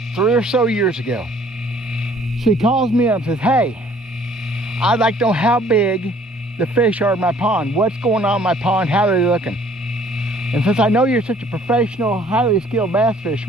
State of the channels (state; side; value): normal; both; correlation 0.58